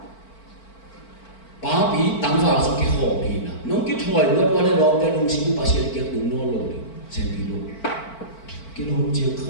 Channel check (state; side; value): late; right; 4.5 ms